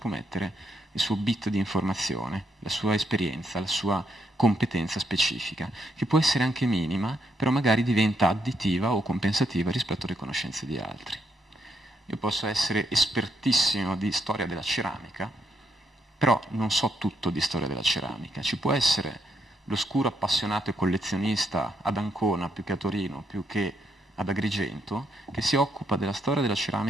mettere il suo bit di informazione, la sua esperienza, la sua competenza specifica, che può essere anche minima, però magari diventa additiva o compensativa rispetto alle conoscenze di altri. Io posso essere espertissimo di storia della ceramica, però non so tutto di storia della ceramica. Ci può essere l'oscuro appassionato e collezionista ad Ancona, più che a Torino, più che ad Agrigento, che si occupa della storia della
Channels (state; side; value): normal; both; correlation 0.77